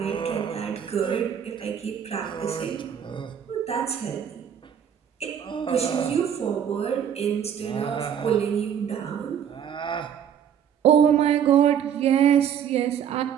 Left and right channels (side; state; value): left; quieter; 8.7 dB